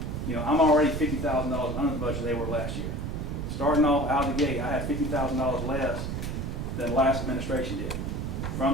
I'm already $50,000 under the budget they were last year. Starting off out of the gate, I had $50,000 less than the last administration did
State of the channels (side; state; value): right; noise; rumble, 3 dB below the sound